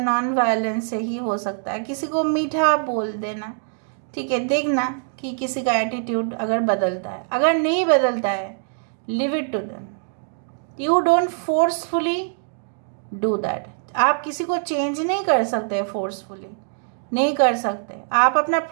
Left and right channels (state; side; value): silent; left; digital silence